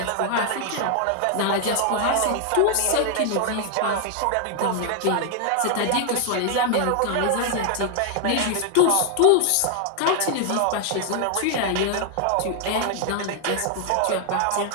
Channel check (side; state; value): both; different; correlation 0.00